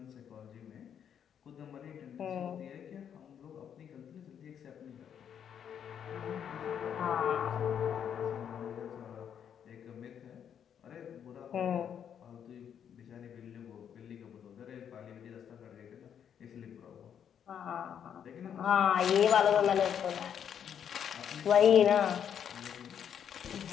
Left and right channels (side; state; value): right; quieter; 8.6 dB